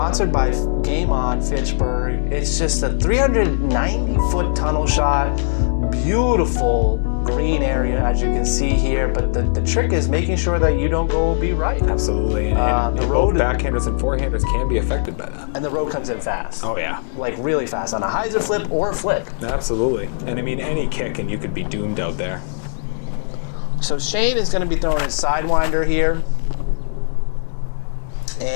by Game On Fitchburg. It's just a 390-foot tunnel shot, beautiful green area, as you can see here. But the trick is making sure that you don't go OB right. Absolutely. And the road, backhanders and forehanders can be affected by that. And the road comes in fast. Oh, yeah. Like really fast on a hyzer flip or a flick. Absolutely. And I mean, any kick and you could be doomed out there. So Shane is going to be throwing his sidewinder here.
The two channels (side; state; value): right; silent; digital silence